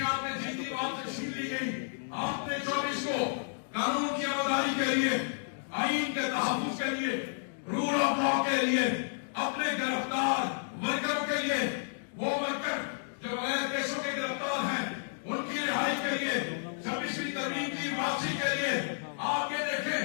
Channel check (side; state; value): right; silent; digital silence